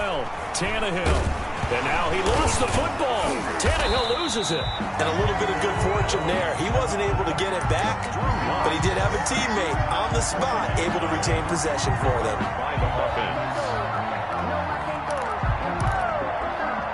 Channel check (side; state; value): both; identical; correlation 1.00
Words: Tannehill. And now he lost the football. Tannehill loses it. And a little bit of good fortune there. He wasn't able to get it back, but he did have a teammate on the spot able to retain possession for them.